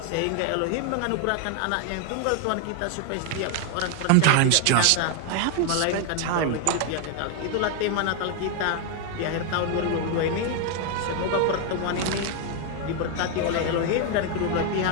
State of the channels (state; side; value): different; both; correlation 0.01